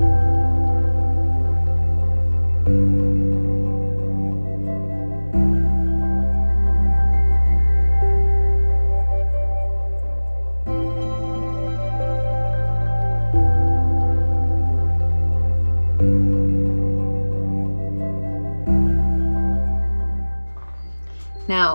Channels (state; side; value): inverted; both; correlation -1.00